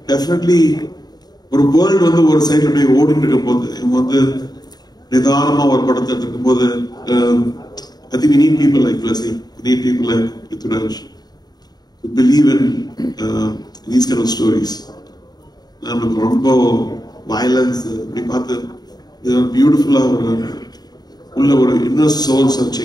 டெஃபினெட்லி ஒரு வேர்ல்டு வந்து ஒரு சைட்ல அப்படியே ஓடிட்டு இருக்கும் போது, இவங்க வந்து நிதானமா ஒரு படத்தை எடுத்துக்கும் போது, I think we need people like Blessing, we need people like Prithviraj to believe in these kind of stories. நம்மளுக்கு ரொம்ப வயலன்ஸ் அப்படி பார்த்து பியூட்டிஃபுல்லா உள்ள ஒரு இன்னர் சோல்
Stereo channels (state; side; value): late; right; 0.19 ms